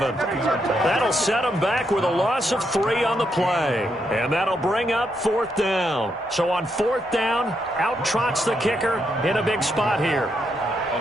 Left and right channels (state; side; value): normal; both; correlation 0.79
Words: That'll set them back with a loss of 3 on the play. And that'll bring up 4th down. So on 4th down, out trots the kicker in a big spot here.